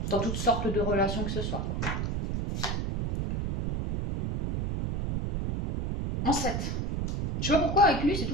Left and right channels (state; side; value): noise; right; rumble, 2 dB below the sound